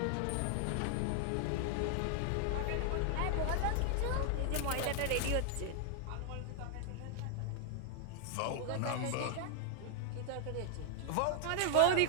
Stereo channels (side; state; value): both; different; correlation 0.00